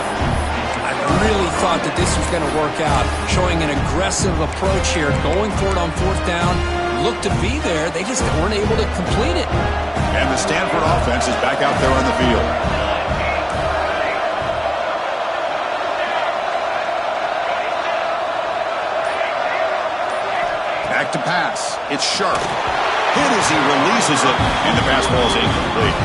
I really thought that this was going to work out. Showing an aggressive approach here. Going for it on fourth down. Looked to be there. They just weren't able to complete it. And the Stanford offense is back out there on the field. Back to pass. It's Sharp. Hit as he releases it, and the pass ball is incomplete.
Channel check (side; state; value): both; identical; correlation 1.00